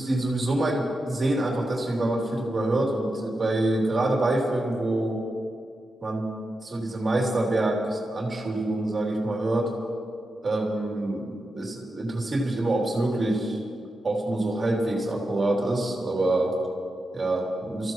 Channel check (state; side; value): normal; both; correlation 0.89